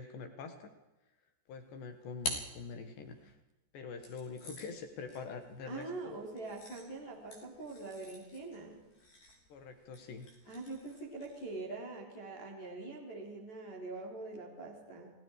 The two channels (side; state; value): right; late; 14 ms